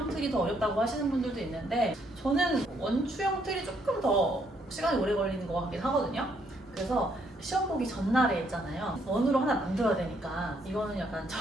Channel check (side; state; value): both; normal; correlation 0.71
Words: 틀이 더 어렵다고 하시는 분들도 있는데 저는 원추형 틀이 조금 더 시간이 오래 걸리는 것 같긴 하거든요. 그래서 시험 보기 전날에 있잖아요. 원으로 하나 만들어야 되니까 이거는 약간